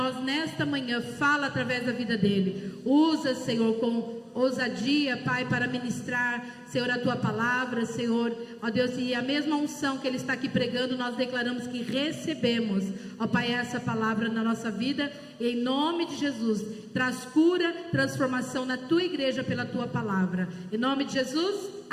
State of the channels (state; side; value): identical; both; correlation 1.00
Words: nesta manhã. Fala através da vida dele. Usa, Senhor, com ousadia, Pai, para ministrar, Senhor, a tua palavra, Senhor, ó Deus, e a mesma unção que ele está aqui pregando, nós declaramos que recebemos, ó Pai, essa palavra na nossa vida, e em nome de Jesus, traz cura, transformação na tua igreja pela tua palavra, em nome de Jesus,